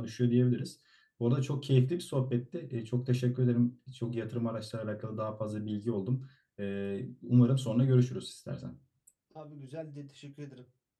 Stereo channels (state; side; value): identical; both; correlation 1.00